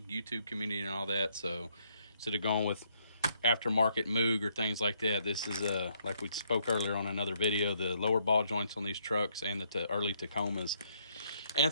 YouTube community, and all that. So instead of going with aftermarket Moog or things like that, this is like we spoke earlier on another video, the lower ball joints on these trucks and the early Tacomas and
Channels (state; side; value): inverted; both; correlation -0.71